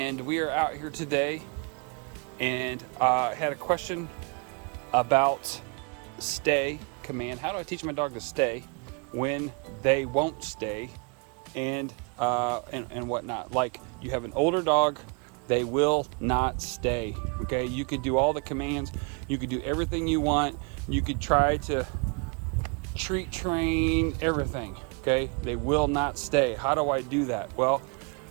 we are out here today, and I had a question about stay command. How do I teach my dog to stay when they won't stay, and whatnot? Like, you have an older dog, they will not stay. Okay, you could do all the commands, you could do everything you want, you could try to treat, train, everything, okay? They will not stay. How do I do that? Well,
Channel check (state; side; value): quieter; left; 33.3 dB